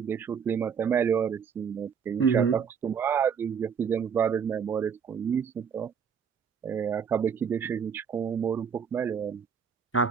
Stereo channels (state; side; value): quieter; left; 7.0 dB